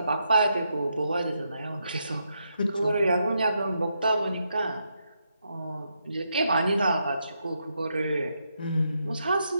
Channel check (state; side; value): inverted; both; correlation -0.81